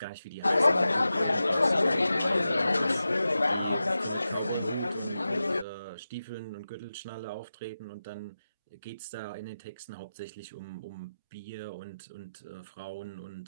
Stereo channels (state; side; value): inverted; both; correlation -0.93